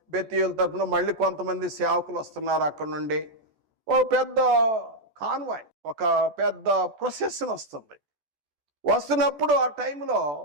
బెతీయుల తరపున మళ్ళీ కొంతమంది సేవకులు వస్తున్నారు. అక్కడ నుండి ఒక పెద్ద కాన్వాయ్, ఒక పెద్ద ప్రొసెషన్ వస్తుంది. వస్తున్నప్పుడు ఆ టైంలో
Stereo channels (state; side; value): late; left; 14 ms